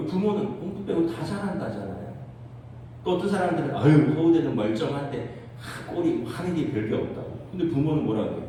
공부 빼고 다 잘한다잖아요. 또 어떤 사람들은 서울대는 멀쩡한데 꼴이 하는 게 별게 없다고. 근데 부모는 뭐라고 해요?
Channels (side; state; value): both; identical; correlation 1.00